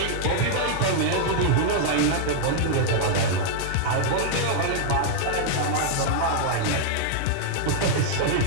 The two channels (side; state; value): both; different; correlation -0.01